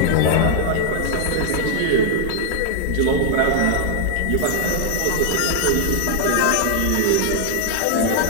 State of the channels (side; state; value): both; different; correlation 0.00